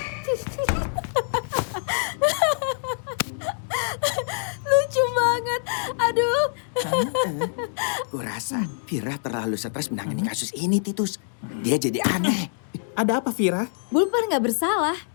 Lucu banget. Aduh. Kurasa Vira terlalu stres menangani kasus ini, Titus. Dia jadi aneh. Ada apa, Vira? Bulpan nggak bersalah.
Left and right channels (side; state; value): right; silent; digital silence